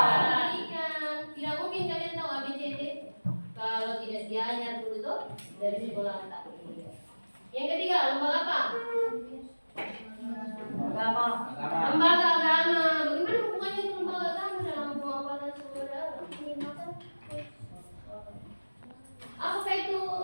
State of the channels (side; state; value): both; inverted; correlation -1.00